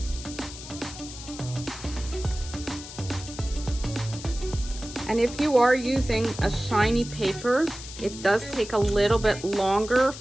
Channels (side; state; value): left; noise; hiss, 13 dB below the sound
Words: And if you are using a shiny paper, it does take a little bit longer